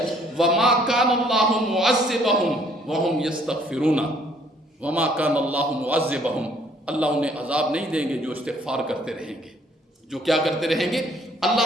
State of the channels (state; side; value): normal; both; correlation 0.62